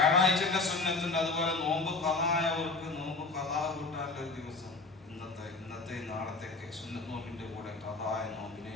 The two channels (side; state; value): right; quieter; 3.7 dB